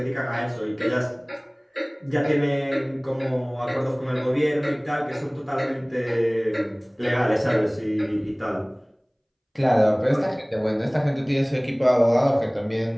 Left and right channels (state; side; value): identical; both; correlation 1.00